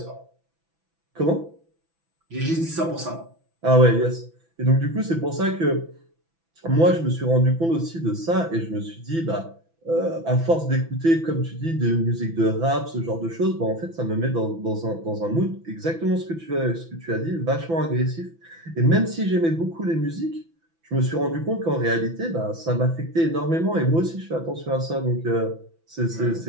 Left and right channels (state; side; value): late; left; 6.0 ms